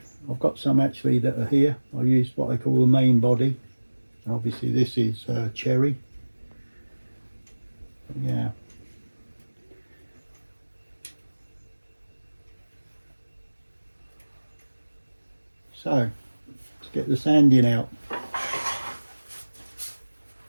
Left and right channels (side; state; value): both; inverted; correlation -1.00